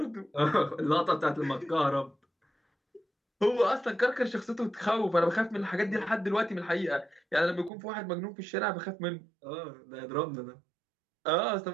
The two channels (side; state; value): left; drops out; at 7.7 s